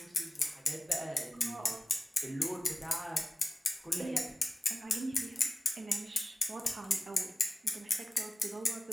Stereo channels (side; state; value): both; normal; correlation 0.96